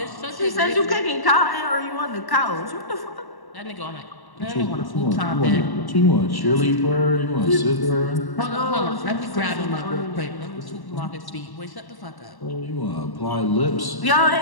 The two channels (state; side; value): late; right; 1.1 ms